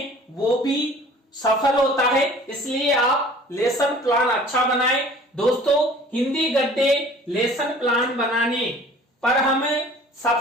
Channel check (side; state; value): both; normal; correlation 0.48